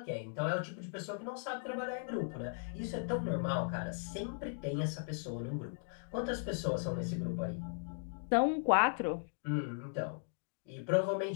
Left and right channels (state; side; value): silent; right; digital silence